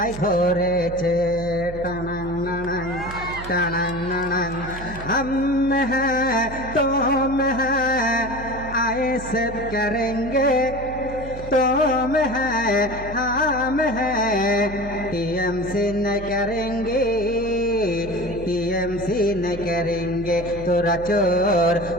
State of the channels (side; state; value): right; noise; hum, 12 dB below the sound